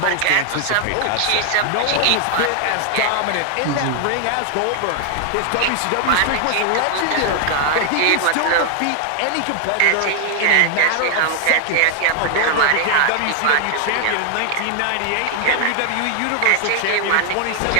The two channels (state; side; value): different; both; correlation 0.00